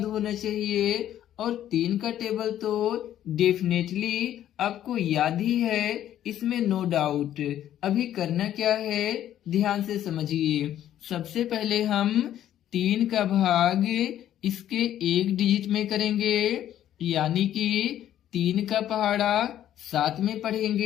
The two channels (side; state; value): right; quieter; 11.6 dB